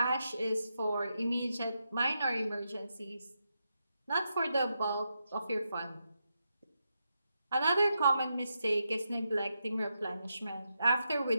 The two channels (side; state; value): both; inverted; correlation -0.85